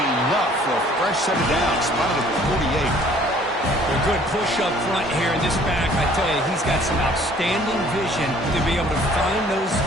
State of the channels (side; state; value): both; normal; correlation 0.56